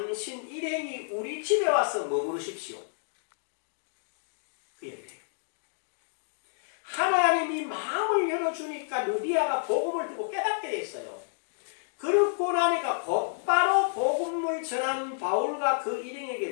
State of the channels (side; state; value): right; silent; digital silence